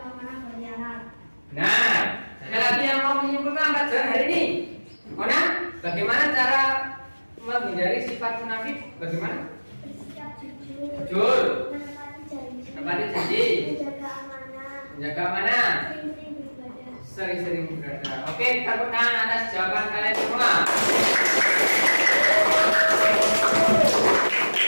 berkhianat. Nah, ada lagi yang mau menyimpulkan pelajaran hari ini? Mona, bagaimana cara menghindari sifat munafik? Bagaimana? Bersikap jujur, Jujur, menepati janji, menepati janji, menjaga amanah, menjaga amanah, sering-sering beribadah. sering-sering beribadah. Oke, tepuk tangan atas jawaban kalian semua.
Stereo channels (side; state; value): both; inverted; correlation -1.00